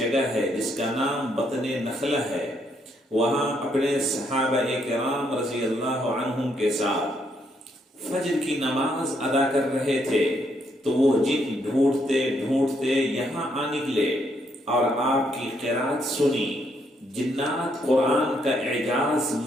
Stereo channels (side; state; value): both; normal; correlation 0.73